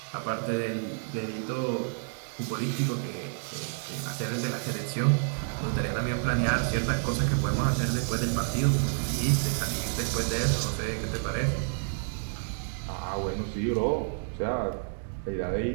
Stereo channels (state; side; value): silent; left; digital silence